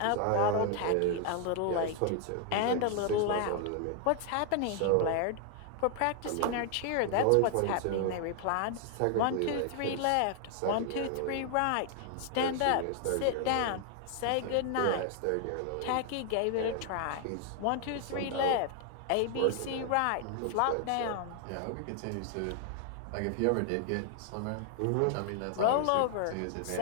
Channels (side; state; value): both; different; correlation 0.00